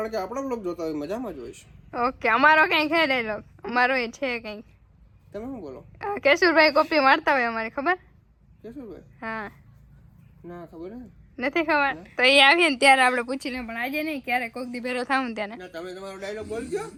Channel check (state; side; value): identical; both; correlation 1.00